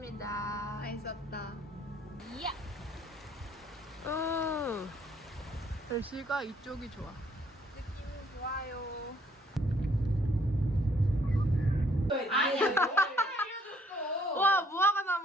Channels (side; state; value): both; normal; correlation 0.65